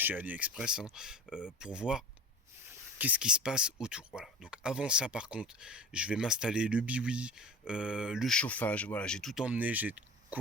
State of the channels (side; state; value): both; normal; correlation 0.35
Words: AliExpress, hein, pour voir qu'est-ce qui se passe autour. Voilà, donc avant ça par contre, je vais m'installer le biwi, le chauffage, voilà, j'ai tout emmené, j'ai de